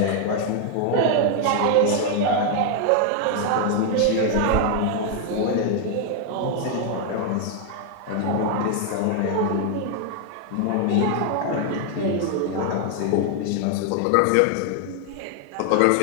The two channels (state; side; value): different; both; correlation 0.00